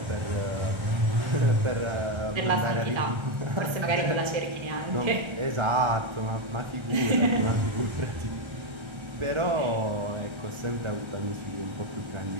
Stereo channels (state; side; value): late; left; 1.3 ms